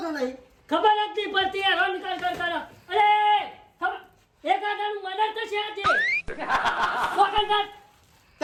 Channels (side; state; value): both; identical; correlation 1.00